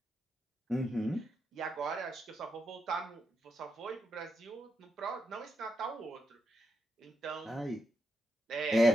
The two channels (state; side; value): normal; both; correlation 0.84